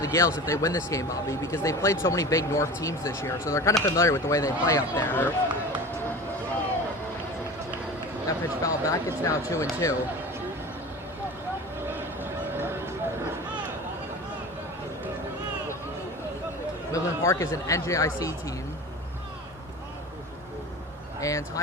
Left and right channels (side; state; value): both; normal; correlation 0.35